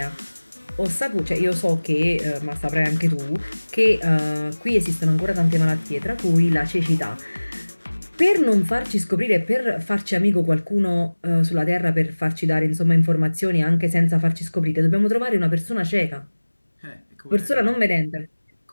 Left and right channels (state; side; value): inverted; both; correlation -1.00